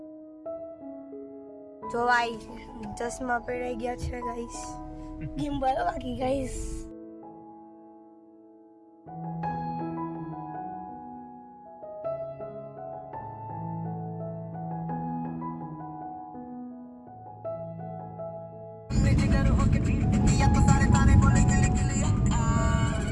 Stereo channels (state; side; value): identical; both; correlation 1.00